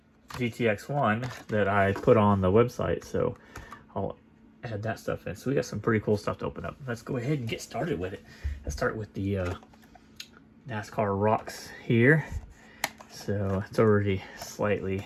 that I put on the website. So I'll add that stuff in. So we got some pretty cool stuff to open up. Let's go ahead and get started with it. Let's start with the NASCAR Rocks here. So it's already slightly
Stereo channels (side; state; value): both; identical; correlation 1.00